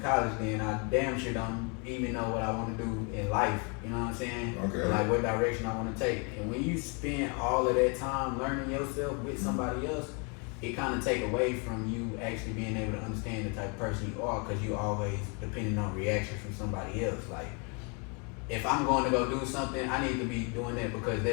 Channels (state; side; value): quieter; right; 34.7 dB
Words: college, then I damn sure don't even know what I want to do in life. You know what I'm saying? Okay. Like what direction I want to take. And when you spend all of that time learning yourself with somebody else, it kind of take away from you actually being able to understand the type of person you are, because you always depending on reaction from somebody else. Like, if I'm going to go do something, I need to be doing that because